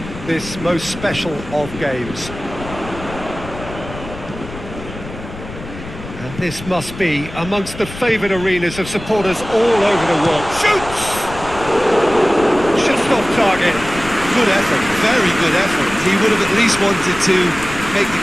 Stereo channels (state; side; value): noise; left; rumble, 13 dB below the sound